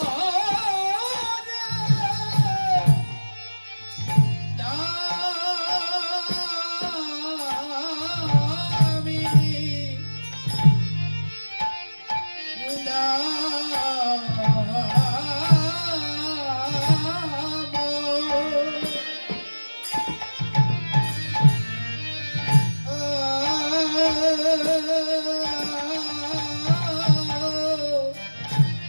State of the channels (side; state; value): both; inverted; correlation -1.00